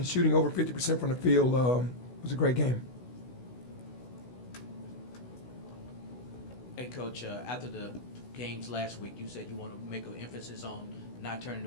shooting over 50% from the field was a great game. Hey, Coach, after the games last week, you said you want to make an emphasis on not turning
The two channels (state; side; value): late; right; 16 ms